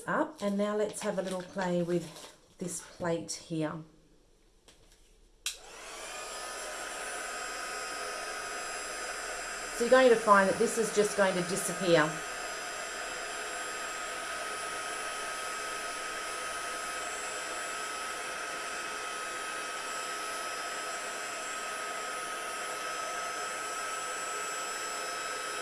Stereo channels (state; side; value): identical; both; correlation 1.00